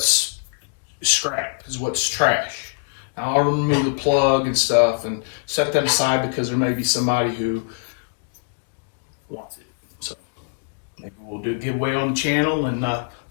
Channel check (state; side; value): silent; right; digital silence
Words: scrap, is what's trash. Now I'll remove the plug and stuff and set that aside, because there may be somebody who wants it. So maybe we'll do a giveaway on the channel, and that